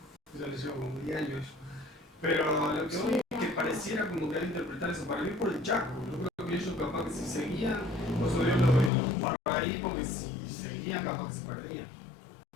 Yo les llevo como 10 años. Pero lo que voy es que pareciera como que al interpretar eso, para mí por el Chaco. Yo creo que ellos capaz que si seguían, por eso Dios los paró ahí, porque si seguían capaz que se perdían.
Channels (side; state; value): right; drops out; at 8.9 s